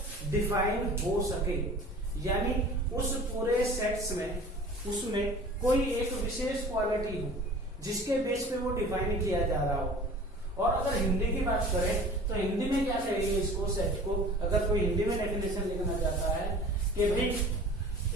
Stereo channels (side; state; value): both; normal; correlation 0.43